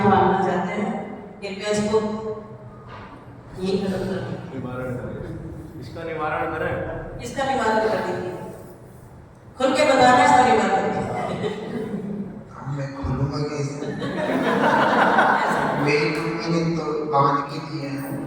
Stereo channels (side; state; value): both; identical; correlation 1.00